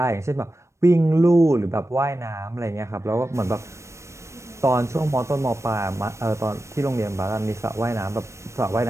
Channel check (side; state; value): left; late; 0.14 ms